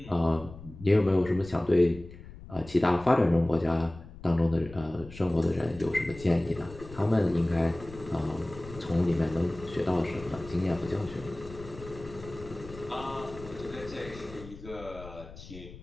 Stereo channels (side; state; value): left; noise; rumble, 16 dB below the sound